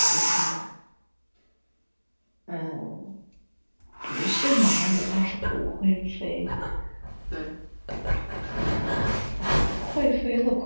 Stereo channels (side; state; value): both; inverted; correlation -1.00